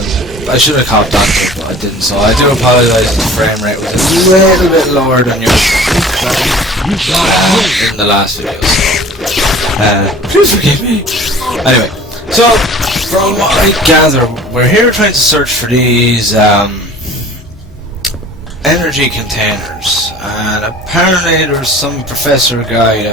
I should have copped on to it, but I didn't. So I do apologise if the frame rate was a little bit lower than usual in the last video. So please forgive me. Anyway, so from what I gather, we're here trying to search for these energy containers, and apparently there's some professor guy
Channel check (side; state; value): both; normal; correlation 0.45